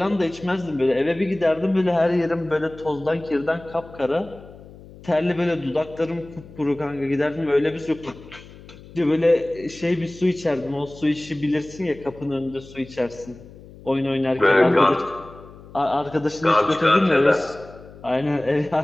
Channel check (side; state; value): left; noise; hum, 19 dB below the sound